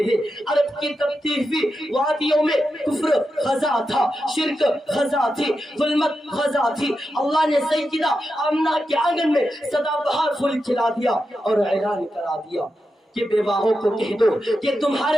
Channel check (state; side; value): normal; both; correlation 0.88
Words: ہیں۔ عرب کی تبتی ہوئی وادیوں میں کفر خزاں تھا، شرک خزاں تھی، ظلمت خزاں تھی۔ اللہ نے سیدہ آمنہ کے آنگن میں سدا بہار پھول کھلا دیا اور اعلان کرا دیا کہ بیواہوں کو کہہ دو کہ تمہارے